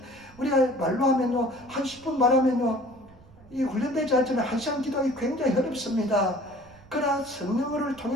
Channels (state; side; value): noise; right; rumble, 24 dB below the sound